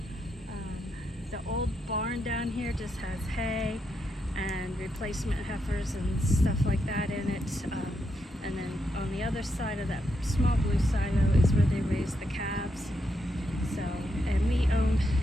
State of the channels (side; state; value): both; normal; correlation 0.81